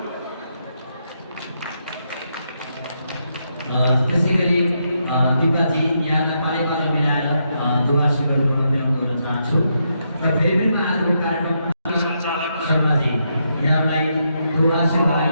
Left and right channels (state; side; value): inverted; both; correlation -0.80